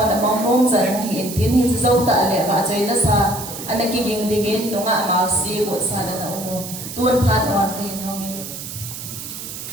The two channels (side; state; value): right; noise; hiss, 9 dB below the sound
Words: among nom zan hi tin hi zo ta le ba chai na sa anaki ging dingin no nga ma si ko sa na umu tuan phan on cái hình hong